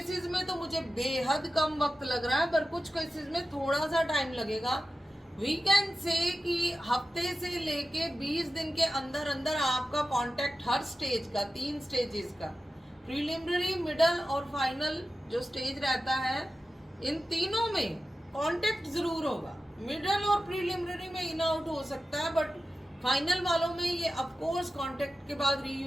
में तो मुझे बेहद कम वक्त लग रहा है, पर कुछ केसेस में थोड़ा सा टाइम लगेगा। वी कैन से कि हफ्ते से लेके 20 दिन के अंदर अंदर आपका कांटेक्ट हर स्टेज का, 3 स्टेजेस का, प्रीलिमिनरी, मिडल और फाइनल जो स्टेज रहता है, इन तीनों में कांटेक्ट जरूर होगा। मिडल और प्रीलिमिनरी में इन आउट हो सकता है, बट फाइनल वालों में ये ऑफकोर्स कांटेक्ट के बाद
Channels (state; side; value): normal; both; correlation 0.93